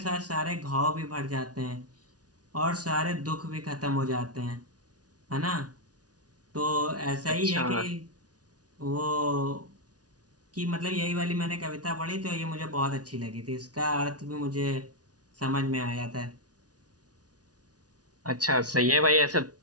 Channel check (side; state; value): left; late; 0.68 ms